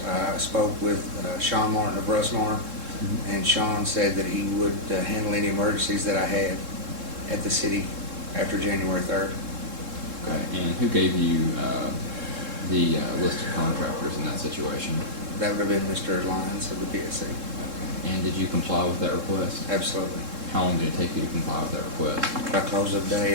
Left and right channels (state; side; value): late; left; 3.7 ms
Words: I spoke with Sean Martin of Russmar, and Sean said that he would handle any emergencies that I had at the city after January 3rd. Okay, and who gave you the list of contractors in that situation? That would have been Mr. Lyons of the PSC. Okay, and did you comply with that request? Absolutely. How long did it take you to comply with that request? By close of day